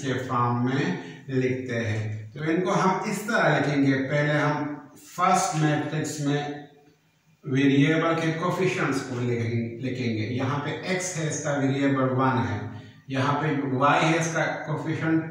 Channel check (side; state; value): both; identical; correlation 1.00